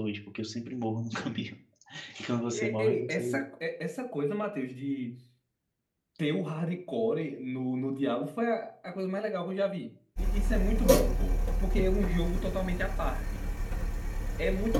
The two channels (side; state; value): both; identical; correlation 1.00